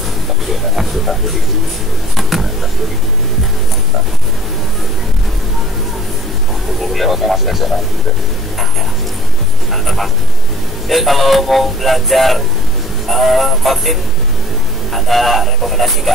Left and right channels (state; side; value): normal; both; correlation 0.51